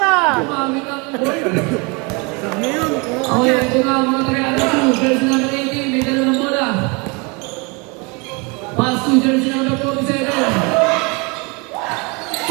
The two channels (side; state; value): left; quieter; 29.6 dB